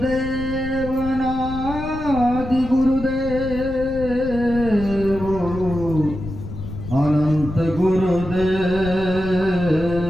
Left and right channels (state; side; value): noise; left; rumble, 10 dB below the sound